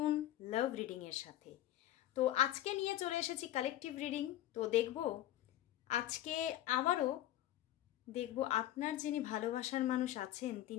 লাভ রিডিং এর সাথে। তো আজকে নিয়ে চলে এসেছি কালেকটিভ রিডিং। তো দেখব আজকে আবারও দেখব আপনার যিনি ভালোবাসার মানুষ আছেন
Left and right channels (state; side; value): quieter; right; 13.7 dB